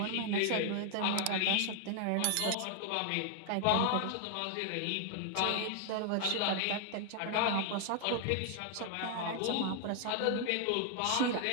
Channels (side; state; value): both; different; correlation 0.00